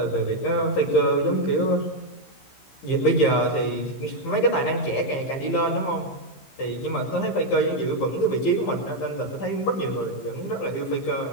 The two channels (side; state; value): right; late; 15 ms